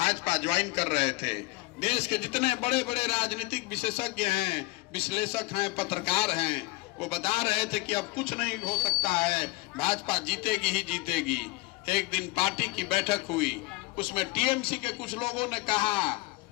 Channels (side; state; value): right; quieter; 22.8 dB